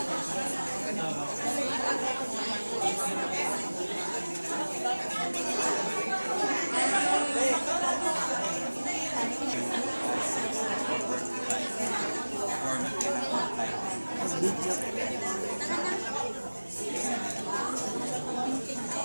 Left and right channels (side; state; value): both; inverted; correlation -1.00